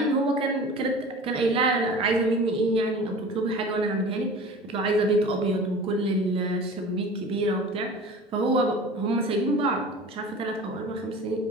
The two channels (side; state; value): both; normal; correlation 0.39